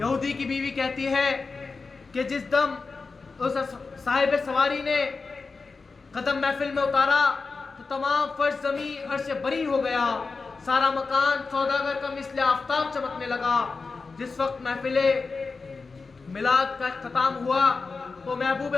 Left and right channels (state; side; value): quieter; right; 4.3 dB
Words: یہودی کی بیوی کہتی ہے کہ جس دم اس صاحب سواری نے قدم محفل میں اتارا تو تمام فرش زمین عرش بری ہو گیا، سارا مکان سوداگر کا مثل آفتاب چمکنے لگا۔ جس وقت محفل میلاد کا اختتام ہوا تو محبوب